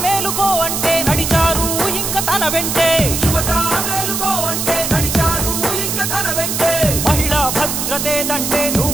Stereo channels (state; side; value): noise; right; hiss, 2 dB below the sound